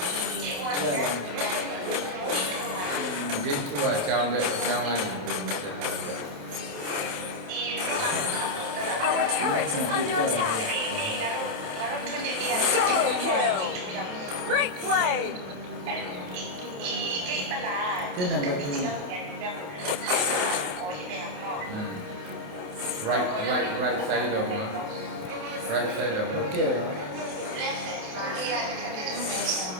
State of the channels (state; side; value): late; left; 28 ms